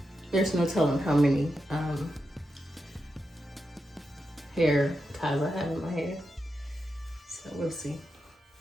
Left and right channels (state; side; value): normal; both; correlation 0.87